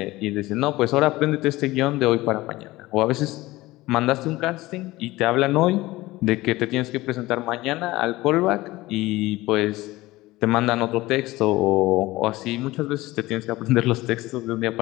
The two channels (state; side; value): quieter; right; 18.9 dB